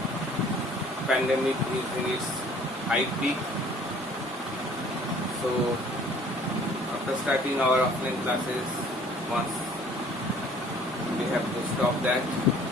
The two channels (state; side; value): normal; both; correlation 0.54